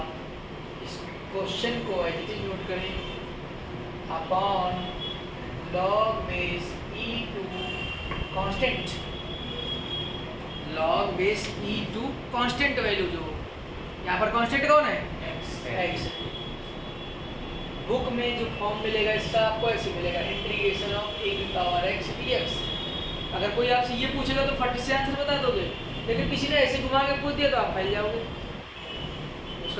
इस क्वेश्चन को एडिटिंग नोट करें, upon log base e2 constant, log base e2 constant value, जो यहाँ पर कांस्टेंट कौन है? x। बुक में जो फॉर्म मिलेगा इसका आपको ऐसे मिलेगा, इंटीग्रेशन ऑफ a की पावर x dx। अगर कोई आपसे ये पूछेगा तो फट से आंसर बता दोगे, लेकिन किसी ने ऐसे घुमा के पूछ दिया तो आप फैल जाओगे।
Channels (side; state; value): both; identical; correlation 1.00